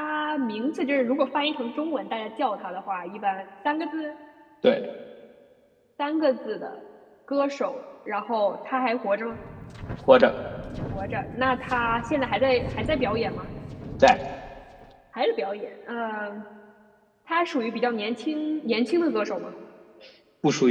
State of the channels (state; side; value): identical; both; correlation 1.00